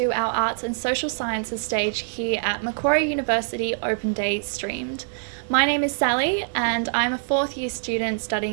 our Arts and Social Sciences stage here at Macquarie University Open Day Streamed. My name is Sally and I'm a 4th year student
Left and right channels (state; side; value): silent; left; digital silence